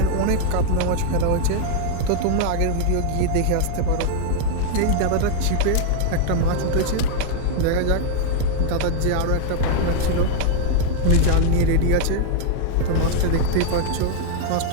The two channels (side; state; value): both; different; correlation 0.00